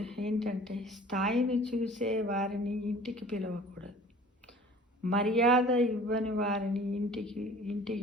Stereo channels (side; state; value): both; normal; correlation 0.46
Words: ఏంటంటే స్థాయిని చూసే వారిని ఇంటికి పిలవకూడదు. మర్యాద ఇవ్వని వారిని